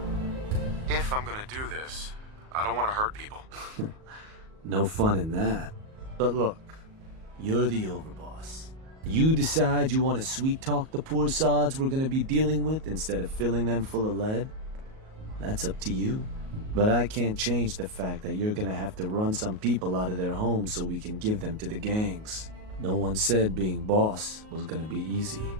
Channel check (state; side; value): late; left; 38 ms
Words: If I'm gonna do this, I don't want to hurt people. No fun in that. But look, you're the overboss. You decide you want to sweet-talk the poor sods we're gonna be dealing with instead of filling them full of lead? That's up to you. But I can't change the fact that you're gonna have to run some people out of their homes so we can give them to the gangs. No one said being boss was gonna be easy.